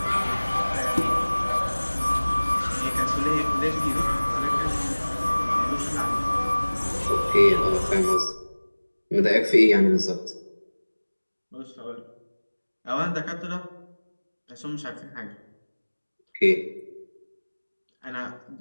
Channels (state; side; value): inverted; both; correlation -1.00